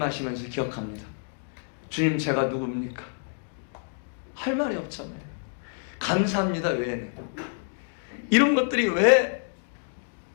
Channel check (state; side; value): silent; right; digital silence